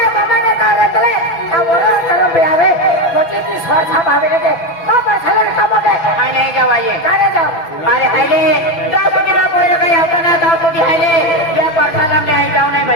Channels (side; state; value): right; late; 6.0 ms